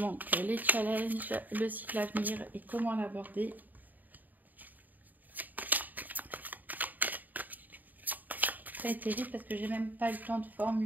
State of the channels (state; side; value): late; left; 0.084 ms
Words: les challenges, le cycle à venir et comment l'aborder. ça a été vite parce que j'ai même pas eu le temps de